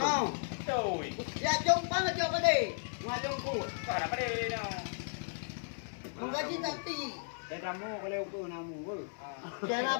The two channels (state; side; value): silent; right; 54 dB below the other